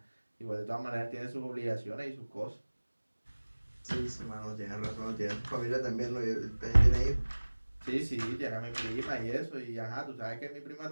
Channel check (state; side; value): inverted; both; correlation -1.00